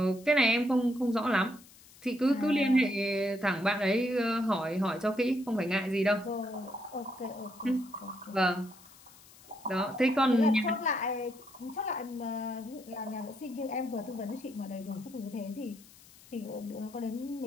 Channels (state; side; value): noise; left; hiss, 23 dB below the sound